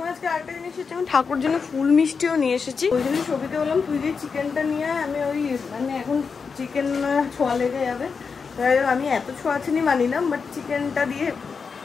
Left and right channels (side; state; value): right; quieter; 5.4 dB